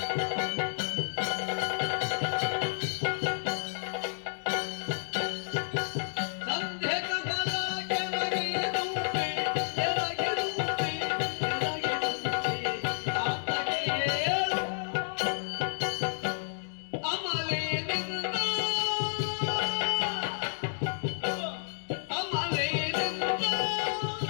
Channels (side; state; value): right; silent; digital silence